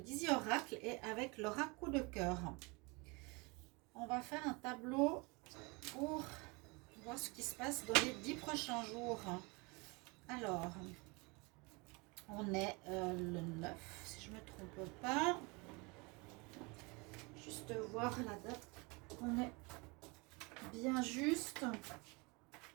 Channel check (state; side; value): quieter; left; 27.9 dB